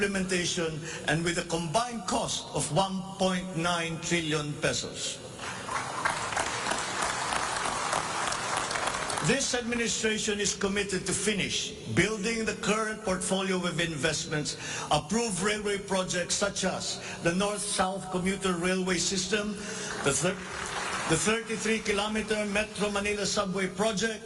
and with a combined cost of 1.9 trillion pesos. This administration is committed to finish building the current portfolio of investments, approved railway projects such as the North-South Commuter Railway System, the 33-kilometer Metro Manila Subway Project,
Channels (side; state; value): both; identical; correlation 1.00